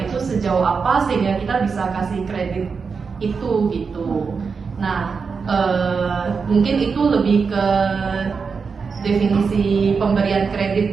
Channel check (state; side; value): quieter; left; 5.3 dB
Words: itu sejauh apa sehingga kita bisa kasih kredit itu gitu. Nah, mungkin itu lebih ke definisi pemberian kredit